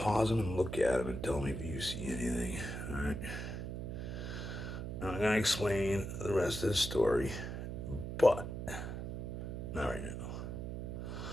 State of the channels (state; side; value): noise; right; hum, 5 dB below the sound